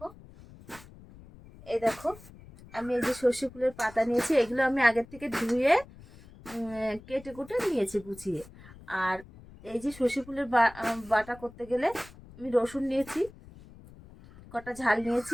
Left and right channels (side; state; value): left; noise; rumble, 20 dB below the sound